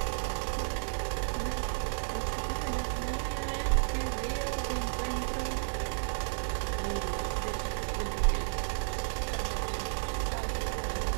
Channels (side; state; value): left; silent; 56 dB below the other